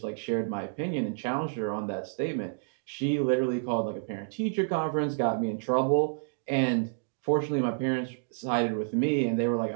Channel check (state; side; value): silent; left; digital silence